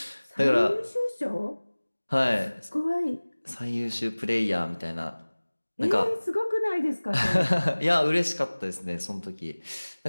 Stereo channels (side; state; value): both; inverted; correlation -1.00